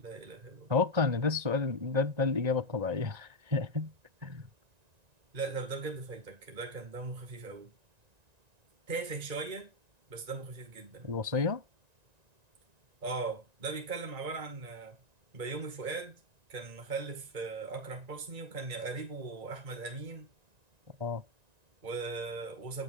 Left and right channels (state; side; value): late; left; 1.9 ms